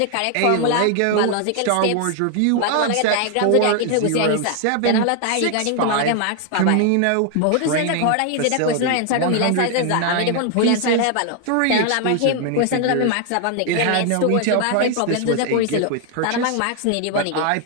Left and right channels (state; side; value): different; both; correlation 0.00